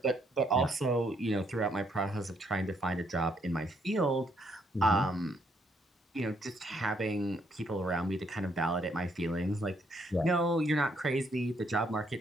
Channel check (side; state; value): both; normal; correlation 0.71